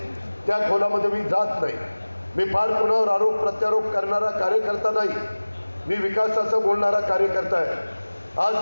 त्या खोलामध्ये मी जात नाही। मी फार कुणावर आरोप प्रत्यारोप करणारा कार्यकर्ता नाही, मी विकासाचं बोलणारा कार्यकर्ता आहे।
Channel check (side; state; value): both; inverted; correlation -1.00